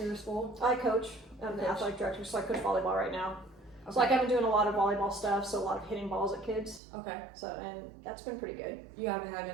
your school? I coach. I'm the Coach. athletic director, so I coach volleyball right now. Okay. So like I've been doing a lot of volleyball stuff, so a lot of hitting balls at kids. Okay. So and that's been pretty good. You haven't had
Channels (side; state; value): left; drops out; at 6.8 s